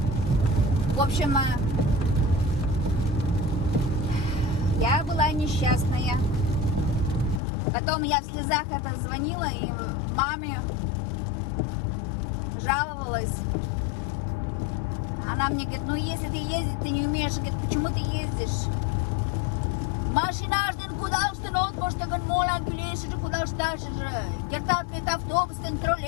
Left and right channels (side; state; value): right; drops out; at 7.4 s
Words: В общем, я была несчастная. Потом я в слезах это звонила и маме жаловалась. Она мне говорит, ну если ты ездить, ты не умеешь, говорит, почему ты ездишь? Mašīnāšdien, kudausten отпуштаган молан килеши, кудашташи, кертапет автобустен,